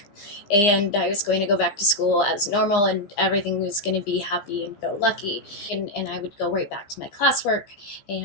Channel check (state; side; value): late; right; 15 ms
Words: and I was going to go back to school as normal, and everything was going to be happy and go lucky. And I would go right back to my classwork,